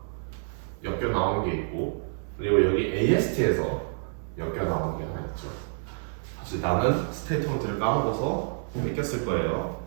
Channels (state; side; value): silent; left; 59 dB below the other